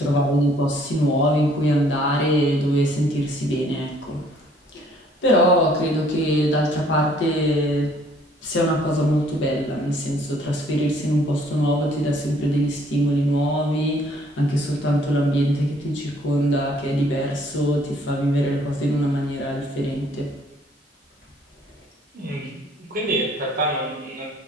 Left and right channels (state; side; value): normal; both; correlation 0.61